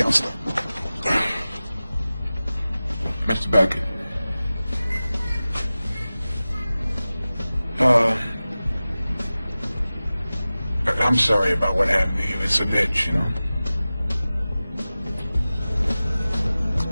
Mr. Beckett. I'm sorry about what happened to you. It's an itch, you know.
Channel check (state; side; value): inverted; both; correlation -0.97